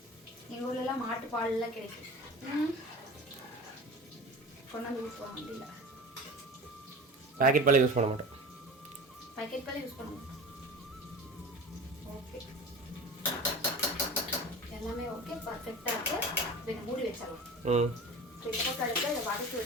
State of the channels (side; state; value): both; normal; correlation 0.35